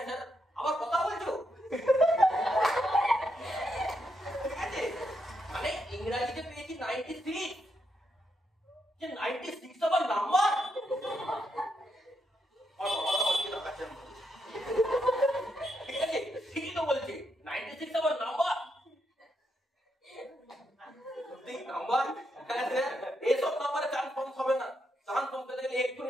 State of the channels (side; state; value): both; normal; correlation 0.80